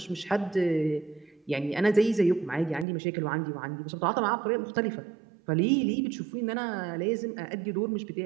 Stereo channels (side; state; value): left; drops out; at 2.9 s